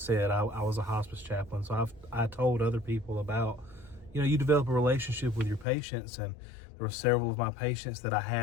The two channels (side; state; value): right; drops out; at 5.7 s